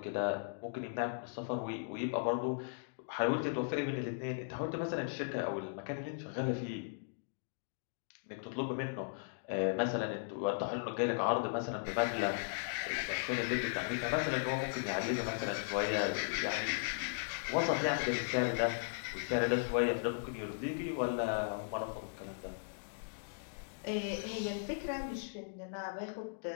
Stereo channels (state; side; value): silent; right; digital silence